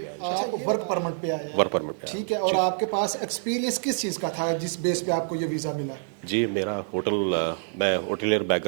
आप वर्क परमिट पे आए हैं। वर्क परमिट पे ठीक है, और आपके पास एक्सपीरियंस किस चीज़ का था जिस बेस पे आपको ये वीज़ा मिला है? जी मेरा मैं होटलियर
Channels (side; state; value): left; silent; digital silence